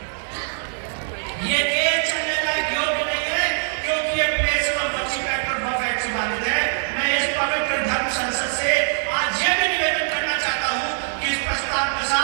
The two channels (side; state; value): left; silent; 64 dB below the other